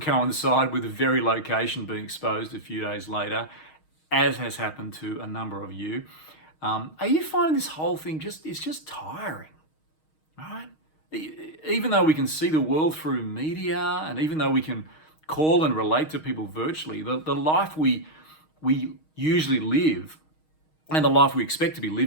coincide with the very location being exposed a few days later, as has happened to a number of you. Are you finding this whole thing it's just tiring, right? Even though we can see the world through media, and even though we can call and relate to people virtually, the life we usually live and the life we expect to be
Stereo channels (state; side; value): late; right; 6.4 ms